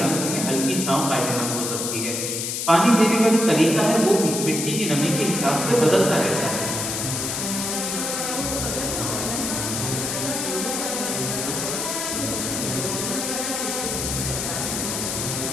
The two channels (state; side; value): noise; left; hiss, 2 dB below the sound